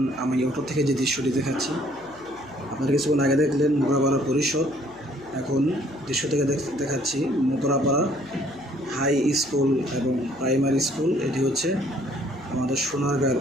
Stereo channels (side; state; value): left; noise; hum, 26 dB below the sound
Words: আমি অটো থেকে যে দৃশ্যটি দেখাচ্ছি, আপনারা কিছুক্ষণ আগে দেখলেন মোগরাপাড়া পরিষদ। এখন দৃশ্য থেকে দেখাচ্ছি মোগরাপাড়া হাই স্কুল এবং প্রাইমারি স্কুল। এটি হচ্ছে আমাদের সোনারগাঁর